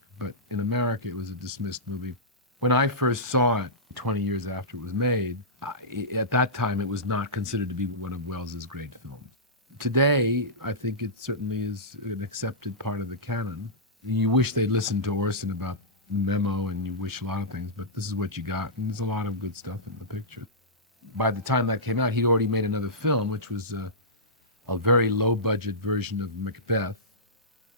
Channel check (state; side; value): normal; both; correlation -0.16